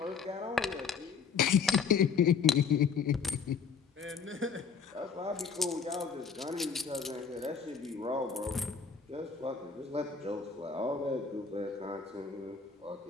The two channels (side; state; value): right; quieter; 5.8 dB